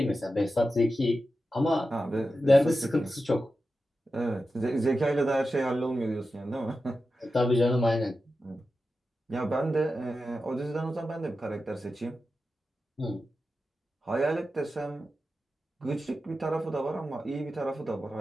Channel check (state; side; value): normal; both; correlation 0.91